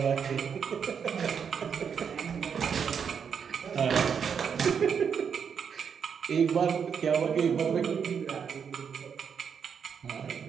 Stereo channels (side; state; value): left; quieter; 7.0 dB